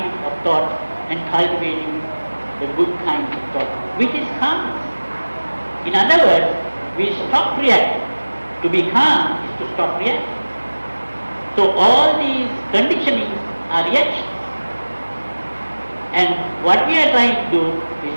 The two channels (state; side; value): inverted; both; correlation -1.00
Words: of thought and cultivating the good kind of thought, which is calmness. In other words, we stop reacting. To be calm is to stop reacting. So all these conditionings are reactions. And what we are trying to do is